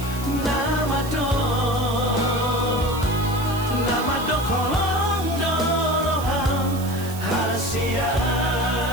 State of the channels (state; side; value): noise; right; hiss, 14 dB below the sound